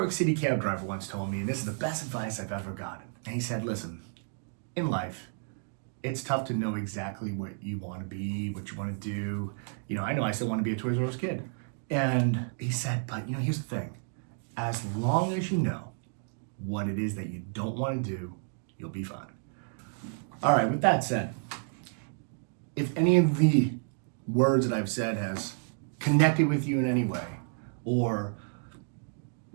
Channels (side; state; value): left; silent; 57 dB below the other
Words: City cab driver once told me, and this is the best advice I've ever gotten. And he said, listen, in life, it's tough to know exactly what you want to be, what you want to do. You know I still want to be a Toys R Us kid. And he said, but you know, here's the thing. As long as you know what it is that you don't want to do, you'll be fine. All right, with that said, if any of the words that I've said has connected with you in any way, or